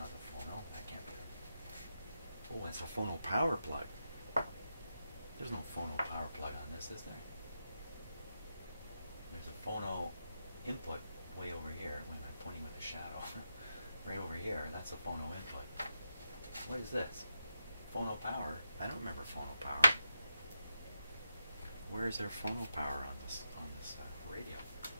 the phono. That can't be the... Oh, that's a phono power plug. There's no phono power plug on this, is there? There's a phono input way over here. When I'm pointing with a shadow. Right over here, that's a phono input. What is this? Phono power? I don't remember phono power. Where is there phono power on this radio?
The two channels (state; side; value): inverted; both; correlation -0.86